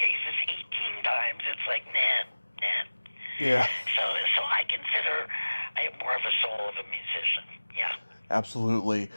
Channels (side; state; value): both; inverted; correlation -1.00